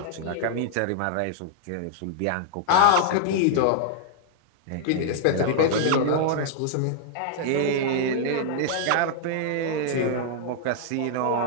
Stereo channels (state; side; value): different; both; correlation -0.01